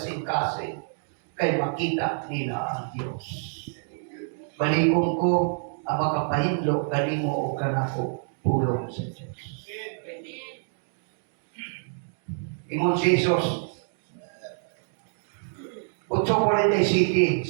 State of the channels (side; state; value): left; silent; digital silence